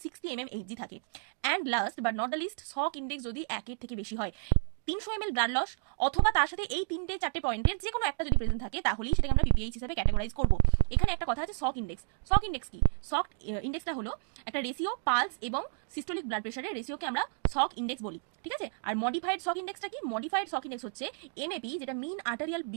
60 mmHg থাকে। And last but not the least, shock index যদি 1 থেকে বেশি হয়। 300 ml ব্লাড লস অথবা তার সাথে এই 3-4 পয়েন্টের যে কোনো একটা যদি প্রেজেন্ট থাকে, তাহলেই সেটাকে আমরা পিপিএইচ হিসেবে ক্যাটাগরাইজ করব। এখানে একটা কথা আছে, সক ইন্ডেক্স। সক ইন্ডেক্স কি? সক ইন্ডেক্সটা হলো একটা রেশিও, পালস এবং সিস্টোলিক ব্লাড প্রেশারের রেশিওকে আমরা সক ইন্ডেক্স বলি, ঠিক আছে? আর মডিফাইড সক ইন্ডেক্সটা কি? মডিফাইড সক ইন্ডেক্স হচ্ছে এমএপি, যেটা mean arterial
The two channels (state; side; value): silent; left; 57 dB below the other